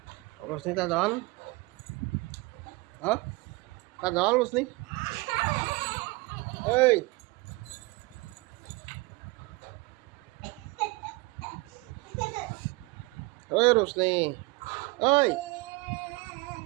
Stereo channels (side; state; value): left; quieter; 24.0 dB